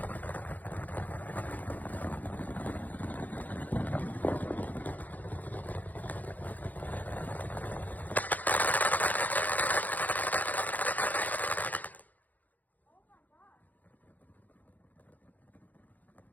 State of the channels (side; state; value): right; late; 0.081 ms